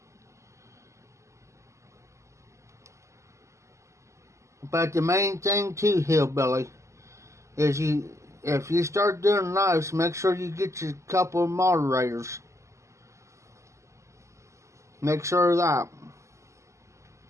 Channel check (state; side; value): late; left; 0.14 ms